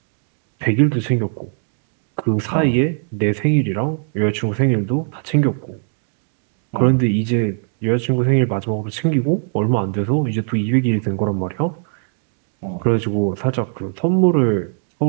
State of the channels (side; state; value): left; silent; digital silence